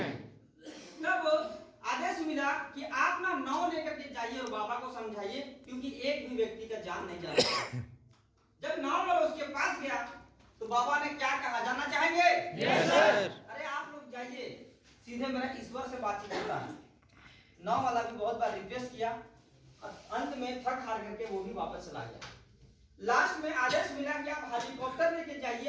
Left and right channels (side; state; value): both; identical; correlation 1.00